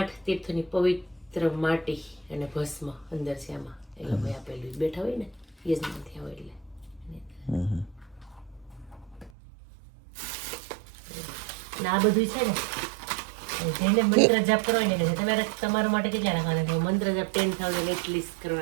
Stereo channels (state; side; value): drops out; left; at 9.3 s